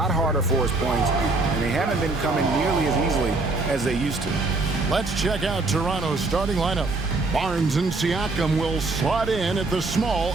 harder for his points, and they haven't been coming nearly as easily as they used to. Let's check out Toronto's starting lineup. Barnes and Siakam will slot in at the small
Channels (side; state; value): left; quieter; 3.3 dB